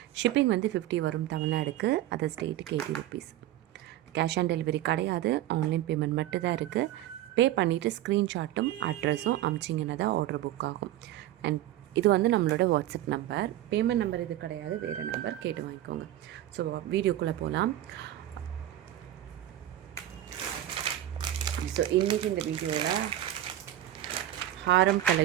ஷிப்பிங் வந்து 50 வரும் தமிழ்நாடுக்கு, அதர் ஸ்டேட்டுக்கு 80 ருபீஸ். கேஷ் ஆன் டெலிவரி கிடையாது, ஆன்லைன் பேமெண்ட் மட்டும் தான் இருக்குது. பே பண்ணிவிட்டு ஸ்க்ரீன்ஷாட்டும் அட்ரஸும் அமிச்சிங்கன்னா தான் ஆர்டர் புக் ஆகும். அண்ட் இது வந்து நம்மளோட வாட்ஸ்அப் நம்பர். பேமெண்ட் நம்பர் இது கிடையாது, வேறு நம்பர் கேட்டு வாங்கிக்கோங்க. ஸோ வீடியோக்குள்ளே போகலாம். ஸோ இன்றைக்கி இந்த வீடியோவில் ஹாரம்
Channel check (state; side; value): quieter; left; 13.3 dB